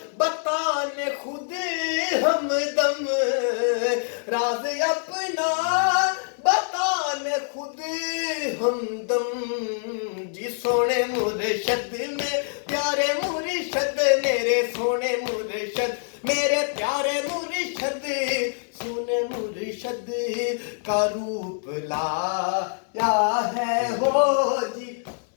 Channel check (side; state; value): right; silent; 62 dB below the other